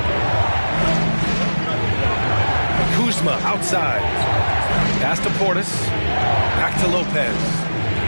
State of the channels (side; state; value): both; inverted; correlation -1.00